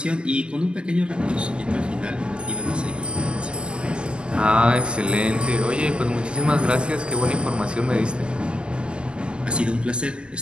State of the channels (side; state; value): left; late; 0.050 ms